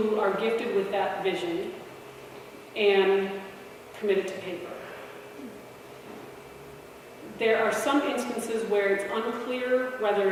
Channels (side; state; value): both; identical; correlation 1.00